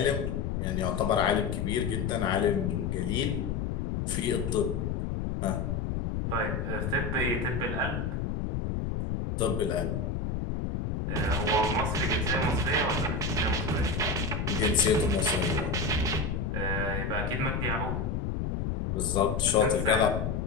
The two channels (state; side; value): noise; left; rumble, 1 dB below the sound